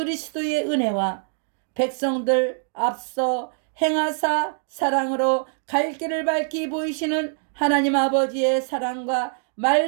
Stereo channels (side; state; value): left; silent; digital silence